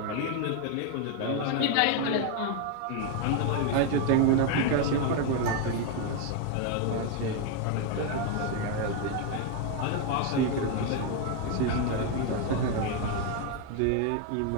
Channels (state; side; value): different; both; correlation 0.01